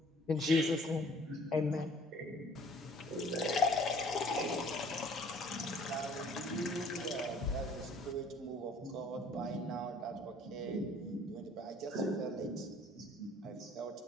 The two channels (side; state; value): both; normal; correlation 0.54